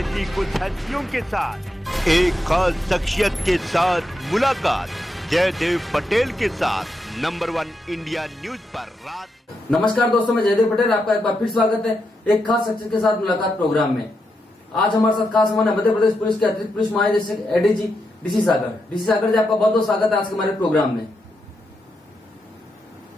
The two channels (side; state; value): both; normal; correlation 0.84